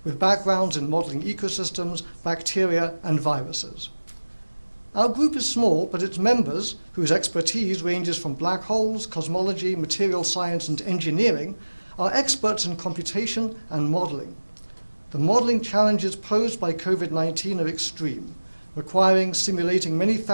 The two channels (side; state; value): both; inverted; correlation -1.00